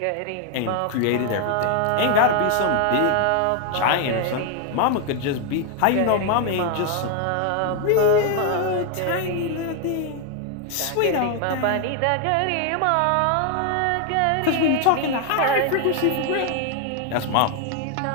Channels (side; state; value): both; different; correlation 0.01